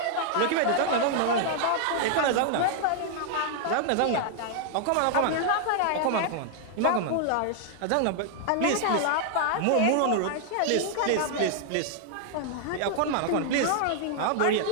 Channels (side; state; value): both; different; correlation 0.00